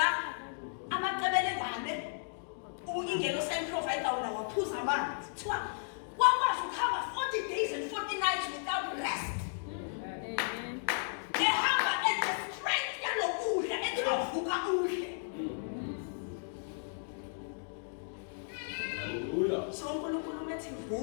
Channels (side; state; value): right; silent; digital silence